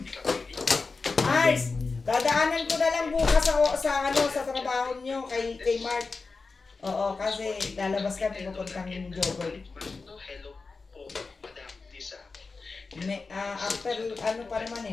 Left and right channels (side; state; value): right; quieter; 4.2 dB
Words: Ars, dadaanan ko na lang bukas sa trabaho nyo kay Mark. Oo, kasi lalabas kami pupuntang jogger. After ano pa naman